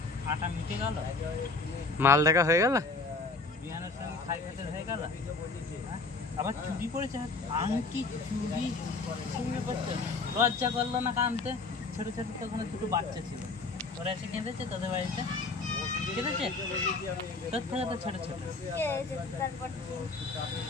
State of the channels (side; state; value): right; quieter; 3.8 dB